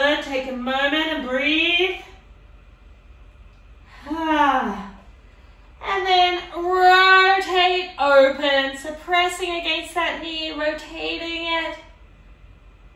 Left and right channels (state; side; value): identical; both; correlation 1.00